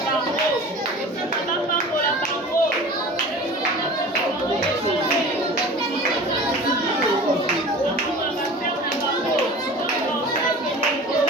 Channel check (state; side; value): normal; both; correlation 0.39